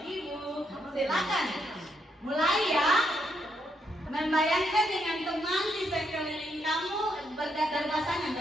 Ibu. Silakan. Mulai ya. Membayangkan dengan teman di sekeliling kamu berpasangan.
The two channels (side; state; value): both; normal; correlation 0.77